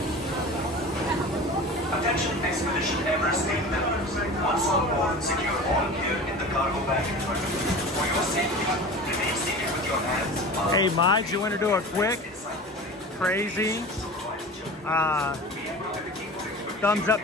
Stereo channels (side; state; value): both; normal; correlation 0.35